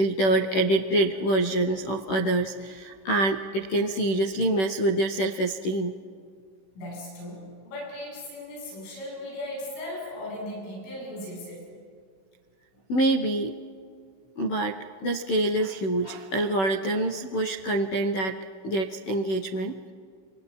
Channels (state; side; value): late; right; 16 ms